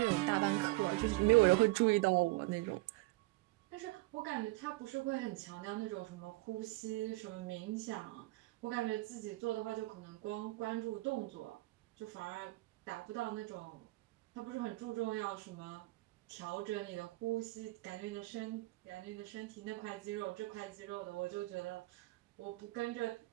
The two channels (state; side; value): quieter; left; 21.5 dB